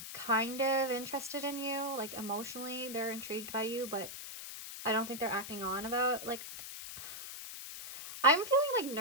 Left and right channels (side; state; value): left; noise; hiss, 9 dB below the sound